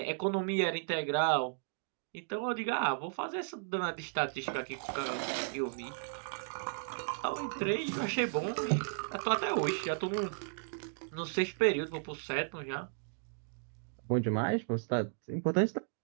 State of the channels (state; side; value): silent; left; digital silence